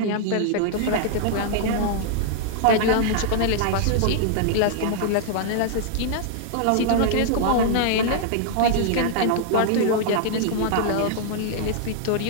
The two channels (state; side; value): different; both; correlation -0.01